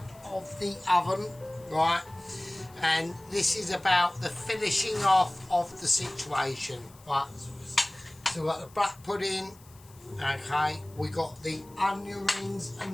of the oven, right? And this is about the finishing off of the situation, right? So we've got the black pudding, okay, we got the onion rings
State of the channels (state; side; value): noise; left; hiss, 25 dB below the sound